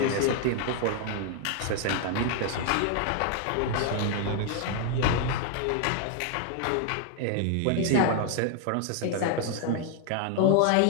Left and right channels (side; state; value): both; different; correlation 0.00